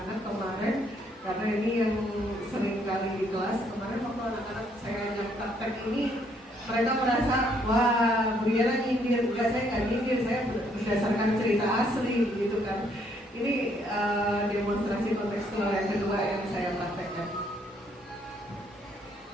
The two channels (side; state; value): both; normal; correlation 0.69